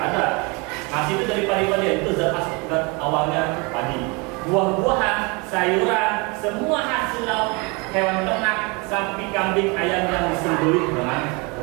ada. Nasi itu dari padi-padian, itu zat awalnya padi. Buah-buahan, sayuran, semua hasil hewan ternak, sapi, kambing, ayam yang disembelih dengan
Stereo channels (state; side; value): quieter; left; 28.6 dB